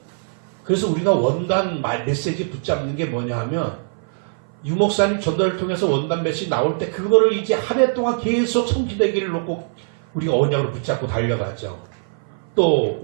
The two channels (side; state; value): left; silent; 57 dB below the other